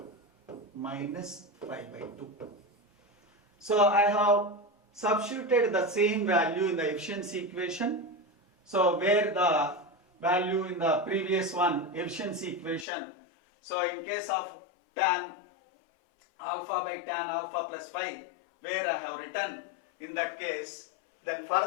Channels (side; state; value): right; drops out; at 12.9 s